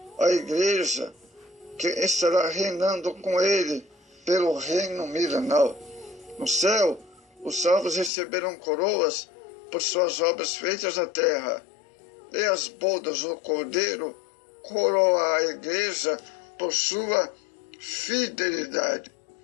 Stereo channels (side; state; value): right; drops out; at 8.1 s